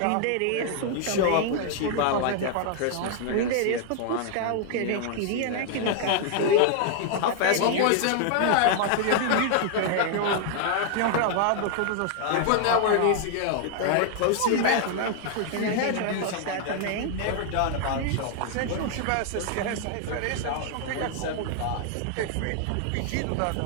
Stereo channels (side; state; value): both; different; correlation 0.00